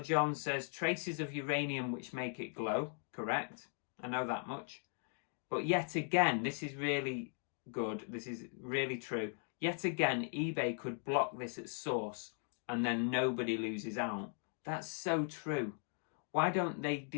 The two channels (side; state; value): right; silent; 52 dB below the other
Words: John says, traces of uranium which make it glow. Correct. I know that much. But yet again, this is really good. This is really true. Yet again, eBay could block this at source and then nobody loses out. That's so true. Why don't they